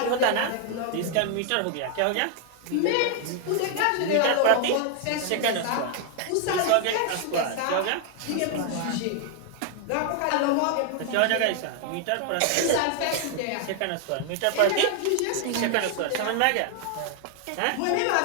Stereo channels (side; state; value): both; different; correlation 0.00